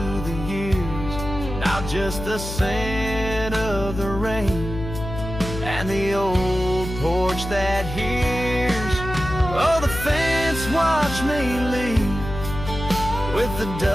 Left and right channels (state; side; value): noise; left; hum, 8 dB below the sound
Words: the years. Now just the scent of the rain and the old porch that hears. Oh, the fence watched me leave with the